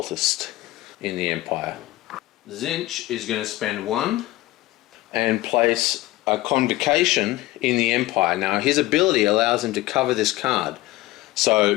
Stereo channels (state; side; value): quieter; right; 17.8 dB